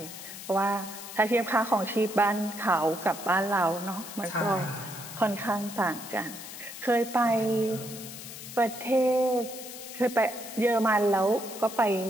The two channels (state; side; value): noise; left; hiss, 12 dB below the sound